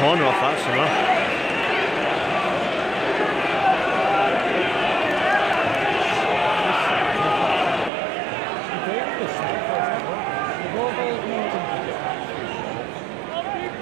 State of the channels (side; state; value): left; drops out; at 7.9 s